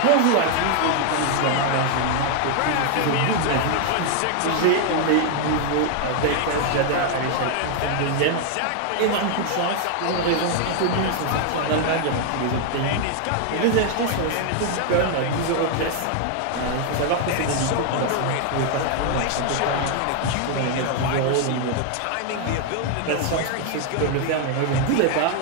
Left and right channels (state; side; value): different; both; correlation 0.00